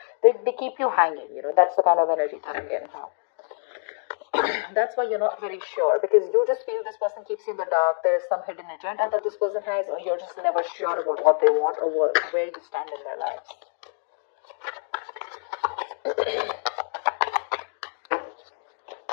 they keep you hanging. That's the kind of energy that I'm getting now. That's why you're not very sure, because you just feel this person keeps you in the dark. There's some hidden agenda that this person has, or you're just never sure about what they want or where you stand in their lives.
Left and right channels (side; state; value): right; silent; digital silence